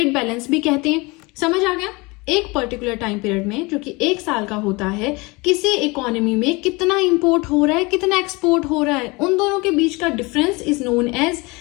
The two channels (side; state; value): right; quieter; 25.4 dB